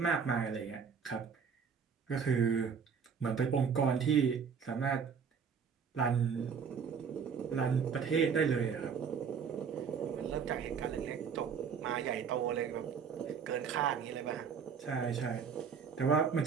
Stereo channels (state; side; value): quieter; left; 6.5 dB